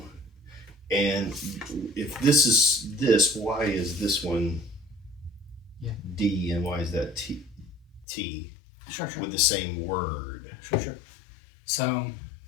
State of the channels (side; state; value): right; drops out; at 8.1 s